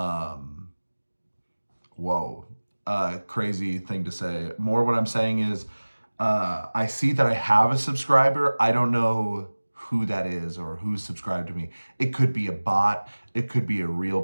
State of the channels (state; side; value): inverted; both; correlation -1.00